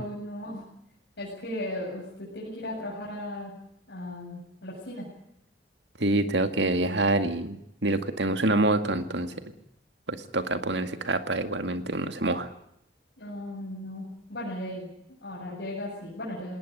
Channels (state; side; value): normal; both; correlation 0.15